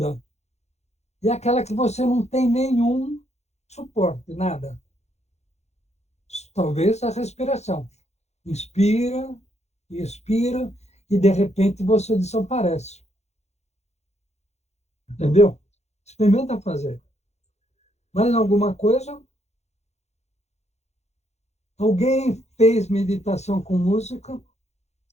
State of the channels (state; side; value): late; right; 0.32 ms